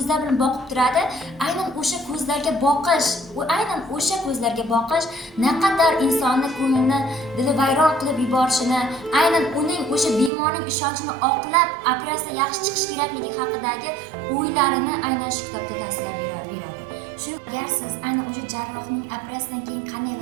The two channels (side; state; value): left; drops out; at 10.3 s